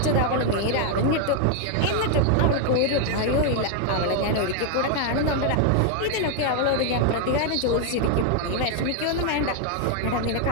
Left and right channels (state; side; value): different; both; correlation 0.00